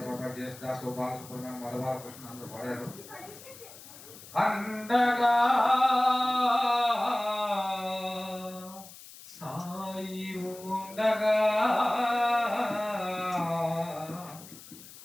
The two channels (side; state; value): left; noise; hiss, 18 dB below the sound